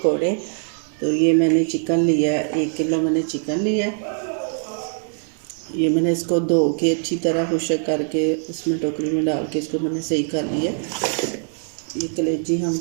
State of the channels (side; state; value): left; silent; 61 dB below the other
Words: तो ये मैंने चिकन लिया है, 1 किलो मैंने चिकन लिया है। ये मैंने इसको धो के अच्छी तरह खुशक करके उसमें टोकरी में डाल के इसको मैंने सही कर लिया। ये कलेजी हम